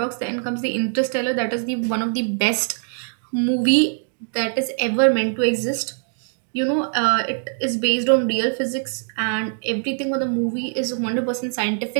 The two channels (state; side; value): silent; left; 60 dB below the other